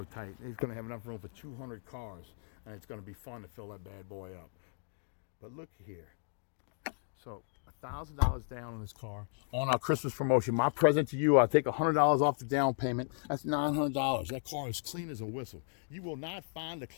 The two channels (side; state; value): right; silent; digital silence